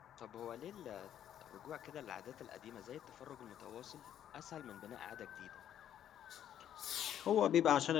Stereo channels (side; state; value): right; quieter; 10.4 dB